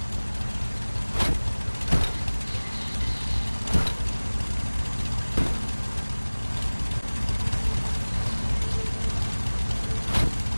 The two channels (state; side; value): inverted; both; correlation -1.00